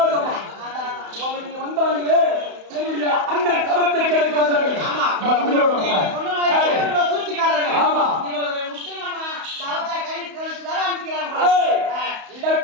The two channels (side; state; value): left; late; 31 ms